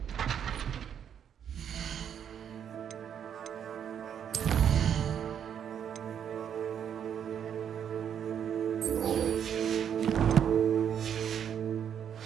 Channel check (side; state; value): left; quieter; 8.6 dB